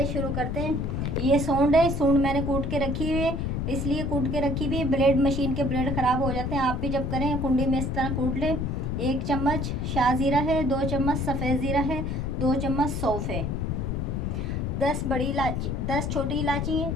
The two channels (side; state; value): left; noise; rumble, 1 dB below the sound